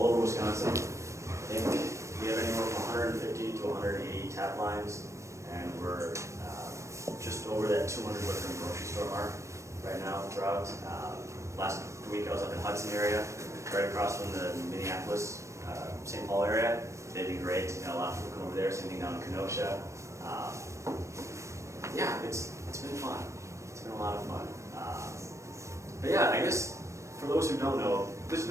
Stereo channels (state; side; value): late; left; 0.15 ms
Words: over Wisconsin. I think we have anywhere from 150 to 180 tap lines, and we're just over that 200 liquor and grocery store mark right now throughout. Last week I was up in Hudson area, right across from the Minneapolis, St. Paul area. They've been great. You know, a lot of people come over there. Same thing down in Kenosha. Yeah, it's been fun. It's been a lot of fun. But yeah, I guess for those who don't know, this